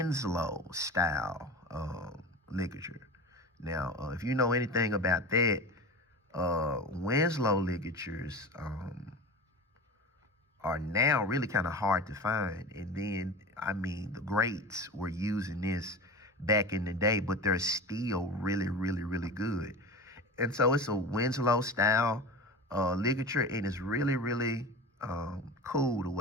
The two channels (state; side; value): normal; both; correlation 0.31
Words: style ligature. Now, if you know anything about that, Winslow ligatures are now really kind of hard to find. And then, I mean, the greats were using this back in the day, but they're still really, really, really good. And so it's a Winslow style ligature, and it's really, really cool the